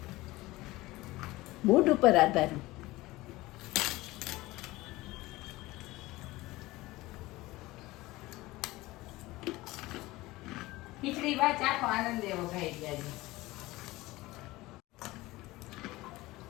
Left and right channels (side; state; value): right; quieter; 19.4 dB